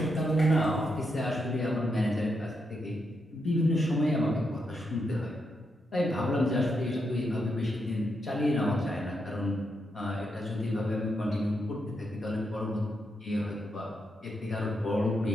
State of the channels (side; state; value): both; normal; correlation 0.82